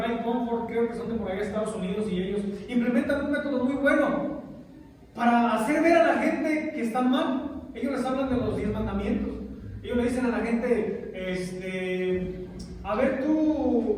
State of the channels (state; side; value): identical; both; correlation 1.00